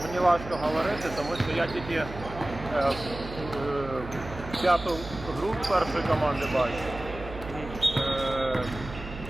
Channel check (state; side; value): noise; right; hum, 12 dB below the sound